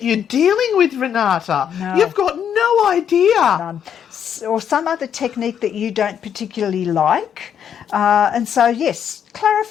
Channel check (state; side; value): quieter; right; 8.6 dB